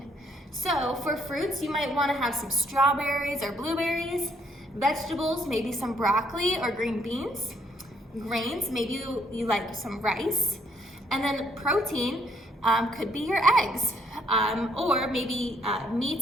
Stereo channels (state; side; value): normal; both; correlation 0.68